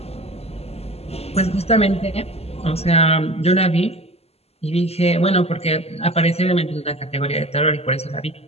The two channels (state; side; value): late; right; 0.29 ms